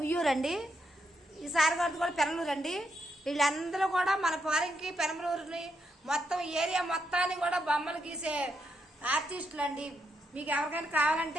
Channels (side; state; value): both; normal; correlation 0.80